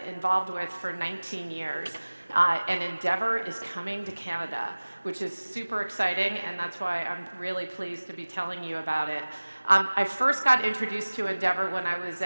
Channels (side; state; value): both; inverted; correlation -1.00